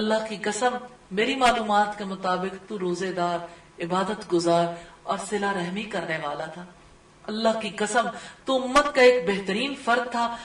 کی قسم میری معلومات کے مطابق تو روزے دار، عبادت گزار اور صلہ رحمی کرنے والا تھا، اللہ کی قسم تو امت کا ایک بہترین فرد تھا۔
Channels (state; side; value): identical; both; correlation 1.00